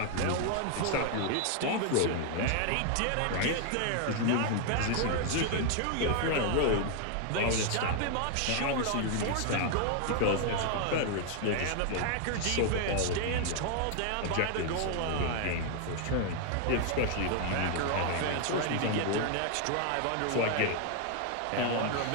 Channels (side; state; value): both; different; correlation 0.00